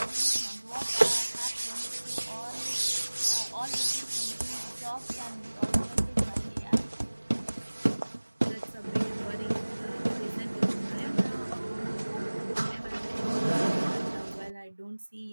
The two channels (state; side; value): inverted; both; correlation -1.00